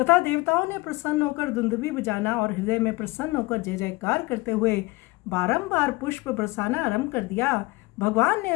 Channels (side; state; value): right; quieter; 22.7 dB